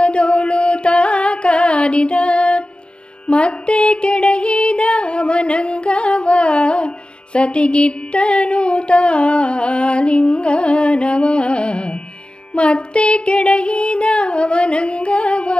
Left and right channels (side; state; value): right; late; 0.053 ms